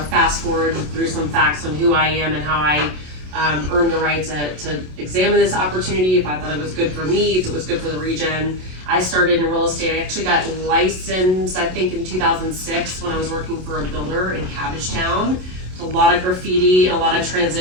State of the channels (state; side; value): late; left; 27 ms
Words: forward through some facts on who I am and how I earned the right to examine this opportunity, if I thought it was good for me, if it was good for the region. I started in real estate. I actually got licensed, I think, in 2006 when I was working for a builder in Cabbagetown. A lot of graffiti, a lot of